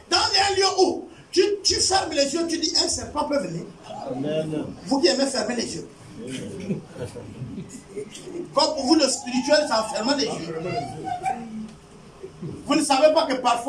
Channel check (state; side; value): identical; both; correlation 1.00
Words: dans un lieu où tu fermes les yeux, tu dis un serpent peut venir. Amen. Vous qui aimez fermer les yeux. Comme pour vous, le spirituel, c'est en fermant les yeux. Vous ne savez pas que